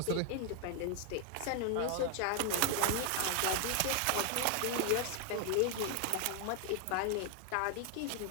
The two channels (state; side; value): different; both; correlation 0.01